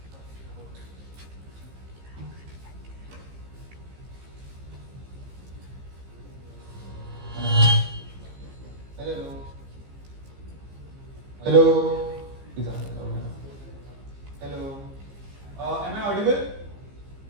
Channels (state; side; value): late; left; 15 ms